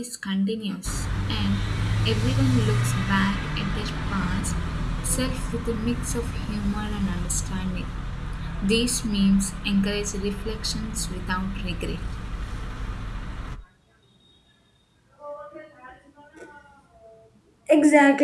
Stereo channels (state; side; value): identical; both; correlation 1.00